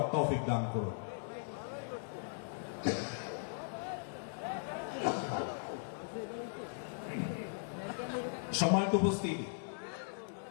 তৌফিক দান করুন। সম্মানিত উপস্থিতি,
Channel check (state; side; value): silent; right; digital silence